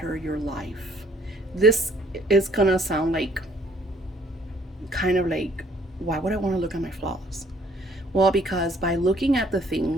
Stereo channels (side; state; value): both; normal; correlation 0.61